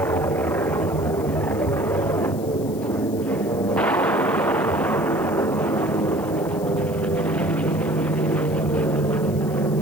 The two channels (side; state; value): left; noise; hiss, 19 dB below the sound